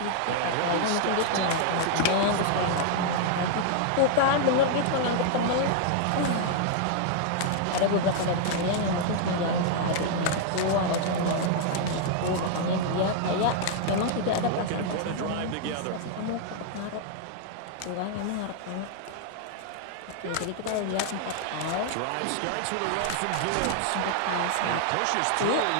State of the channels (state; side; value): different; both; correlation 0.00